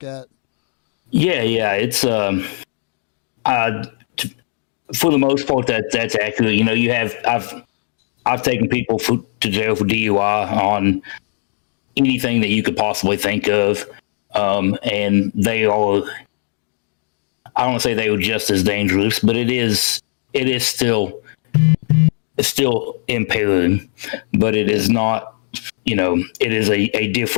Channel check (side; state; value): right; silent; digital silence